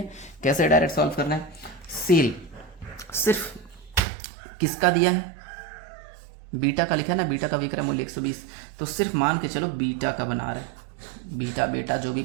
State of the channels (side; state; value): left; drops out; at 4.0 s